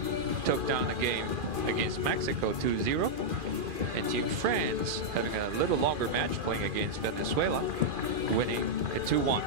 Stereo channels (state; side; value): late; left; 2.4 ms